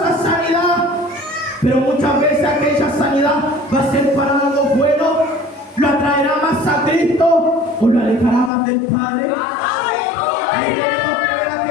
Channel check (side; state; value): right; drops out; at 8.5 s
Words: sanidad. Pero muchas veces aquella sanidad va a ser para algo bueno, lo atraerá más a Cristo o lo alejará más del Padre. Ahí tenemos que ver